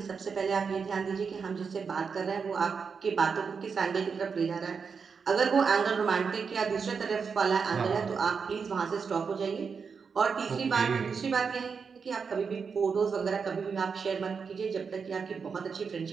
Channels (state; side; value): quieter; left; 5.7 dB